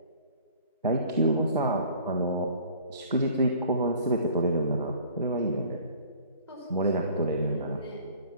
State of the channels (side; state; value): both; inverted; correlation -0.51